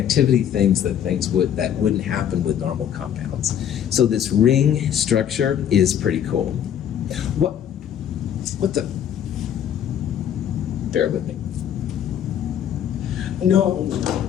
things that wouldn't happen with normal compounds. So this ring structure is pretty cool. What the? Bear with me. No.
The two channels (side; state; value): right; quieter; 9.5 dB